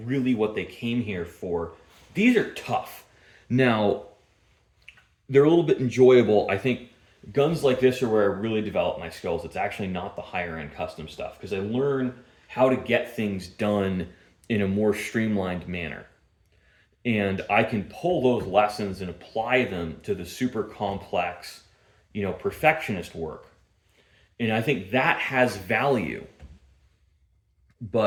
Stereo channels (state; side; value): identical; both; correlation 1.00